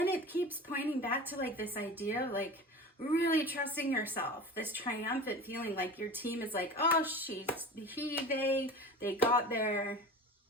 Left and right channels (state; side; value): normal; both; correlation 0.34